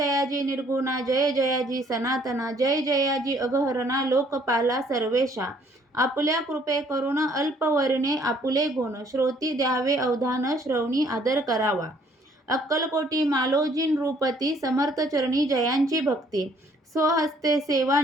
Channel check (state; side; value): normal; both; correlation 0.62